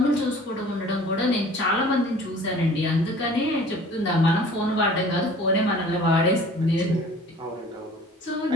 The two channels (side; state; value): both; normal; correlation 0.47